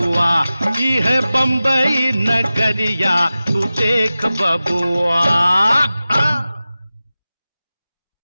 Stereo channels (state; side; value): inverted; both; correlation -0.95